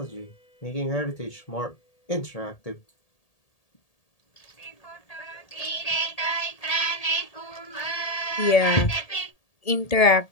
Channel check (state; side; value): late; right; 1.8 ms